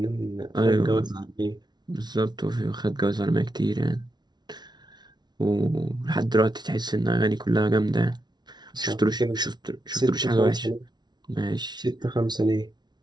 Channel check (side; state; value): left; late; 0.20 ms